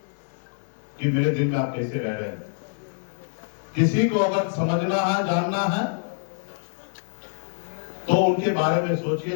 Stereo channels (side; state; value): right; silent; 56 dB below the other